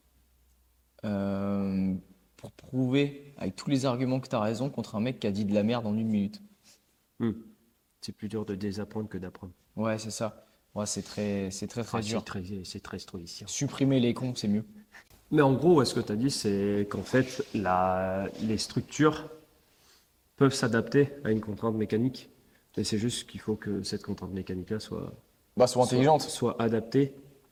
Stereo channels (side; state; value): both; identical; correlation 1.00